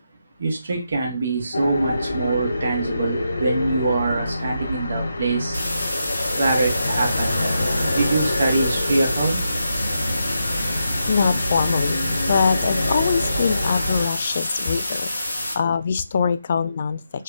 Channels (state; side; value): inverted; both; correlation -0.84